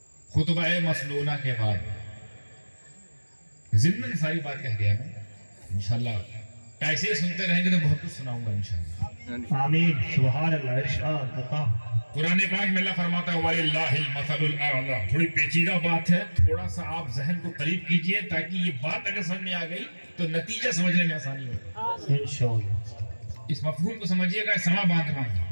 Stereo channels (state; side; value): inverted; both; correlation -1.00